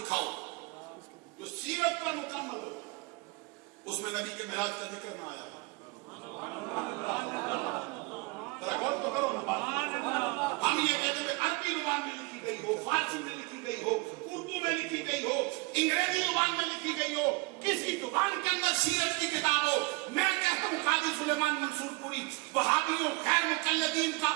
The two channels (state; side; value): quieter; left; 26.0 dB